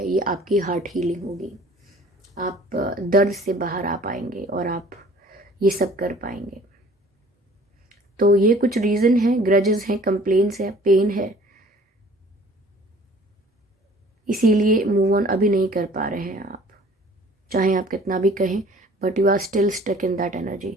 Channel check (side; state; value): both; normal; correlation 0.51